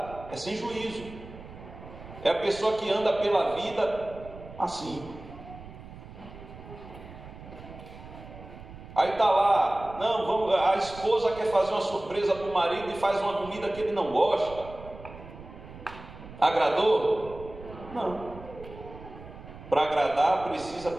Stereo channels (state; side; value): noise; right; rumble, 16 dB below the sound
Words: É sem juízo. É a pessoa que anda pela vida assim. Aí está lá, não, a esposa quer fazer uma surpresa para o marido e faz uma comida que ele não gosta. Agradou? Não. Para agradar precisa